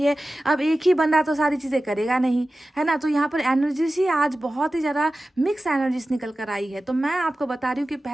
अब एक ही बंदा तो सारी चीज़ें करेगा नहीं, है ना। तो यहाँ पर एनर्जीज ही आज बहुत ही ज़्यादा मिक्स एनर्जीज निकल कर आई है। तो मैं आपको बता रही हूँ कि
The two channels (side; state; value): both; normal; correlation 0.95